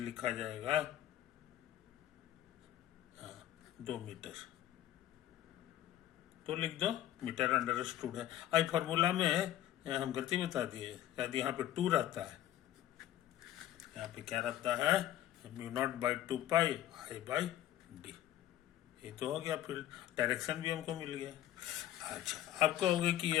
जाएगा 2 मीटर, तो लिख दो मीटर अंडरस्टूड है। आई फॉर्मूला में हम गलती बता दिए, शायद यहाँ पे 2 रहता है, यहाँ पे क्या रहता है, mu naught by 2 pi I by D. ये तो हो गया, फिर डायरेक्शन भी हमको मिल गया। अच्छा, अब कहोगे कि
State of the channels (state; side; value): quieter; right; 12.7 dB